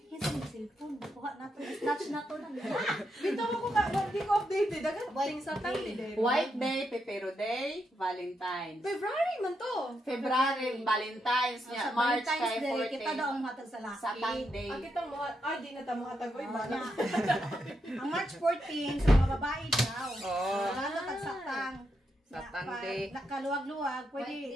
kinsa ni cellphone buha nato snatch nato nang. Bitaw ako ka, hindi ko updated. Dagan ting sa tangli. White Day, Pepero Day, Valentine's. February man to. February, Valentine's niya, Sa March Valentine's kay Day, kita 14. daw ang hatag sa laki. Satang Day. Ang kitang mo, di na tamo hatag oy bala. Ang March 14 sa mga babae daw. Oh. Lalo tagsatang. Satang Day. Nakaluwag-luwag, pwede.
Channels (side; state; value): both; normal; correlation 0.82